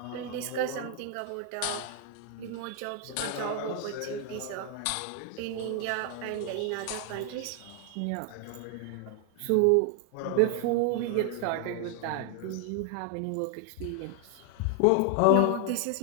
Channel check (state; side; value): different; both; correlation 0.00